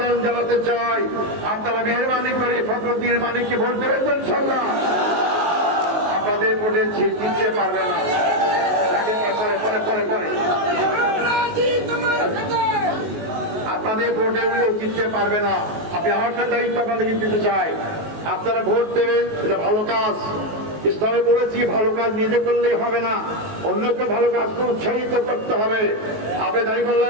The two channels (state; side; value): late; left; 19 ms